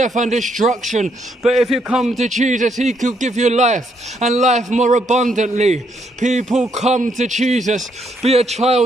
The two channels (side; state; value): both; normal; correlation 0.74